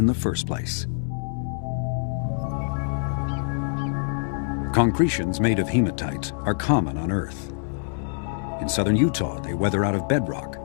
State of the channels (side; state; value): right; silent; digital silence